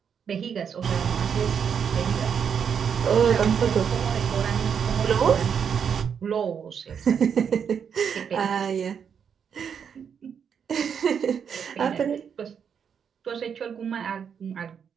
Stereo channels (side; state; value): left; quieter; 7.3 dB